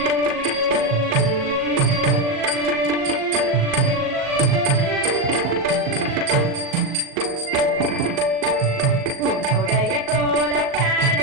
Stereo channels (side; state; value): left; late; 38 ms